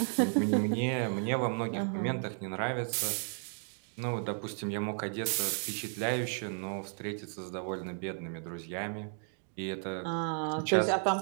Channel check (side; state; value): left; silent; 55 dB below the other